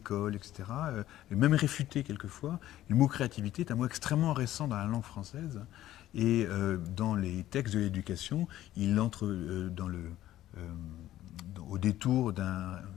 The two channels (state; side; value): quieter; right; 13.7 dB